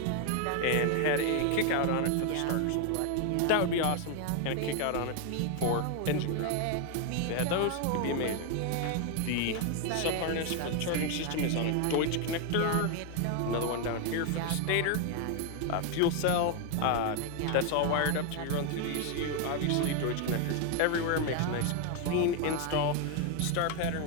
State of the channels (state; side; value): different; both; correlation 0.01